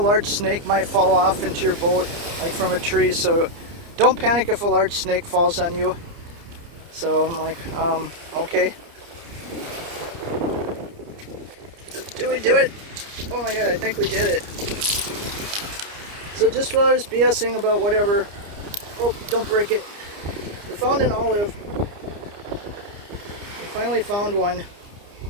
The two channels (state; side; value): late; left; 30 ms